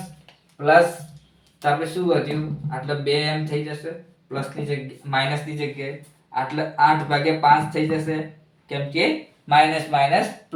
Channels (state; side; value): identical; both; correlation 1.00